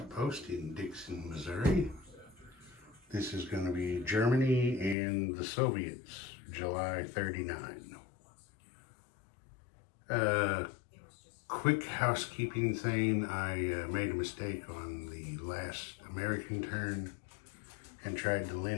in Dixon, Missouri. This is going to be Germany and the Soviets, July 39. Quick housekeeping thing, I made a mistake on the last American turn and tried to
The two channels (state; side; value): drops out; right; at 5.0 s